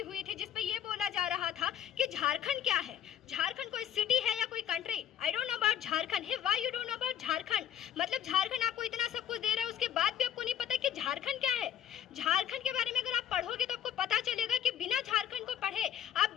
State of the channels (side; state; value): right; quieter; 9.9 dB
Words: हुई थी, जिसपे ये बोला जा रहा था कि झारखंड क्या है, झारखंड कोई सिटी है या कोई country. I don't know about Jharkhand. Hey why you don't know about Jharkhand? मतलब झारखंड आपको इतना सब कुछ दे रहा है, उसके बाद भी आपको नहीं पता कि झारखंड क्या है। झारखंड के बारे में अगर आप पढ़ोगे तो आपको पता चलेगा कि बिना झारखंड को पढ़े